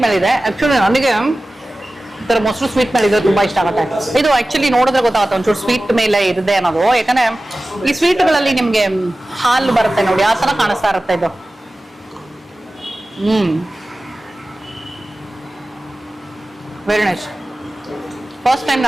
ಮೇಲಿದೆ. ಆಕ್ಚುಲಿ ನನಗೆ ಈ ಥರ ಮೊಸರು ಸ್ವೀಟ್ ಮೇಲೆ ಇದ್ರೆ ತುಂಬಾ ಇಷ್ಟ ಆಗುತ್ತೆ. ಇದು ಆಕ್ಚುಲಿ ನೋಡಿದ್ರೆ ಗೊತ್ತಾಗುತ್ತೆ ಒಂಚೂರು ಸ್ವೀಟ್ ಮೇಲೆ ಇದೆ ಅನ್ನೋದು. ಯಾಕಂದ್ರೆ ಈ ಸ್ವೀಟ್ಗಳಲ್ಲಿ ನಿಮ್ಗೆ ಹಾಲು ಬರುತ್ತೆ ನೋಡಿ, ಆ ತರ ಕಾಣಿಸ್ತಾ ಇರುತ್ತೆ ಇದು. Very nice. ಫಸ್ಟ್ ಟೈಮ್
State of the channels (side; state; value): both; normal; correlation 0.96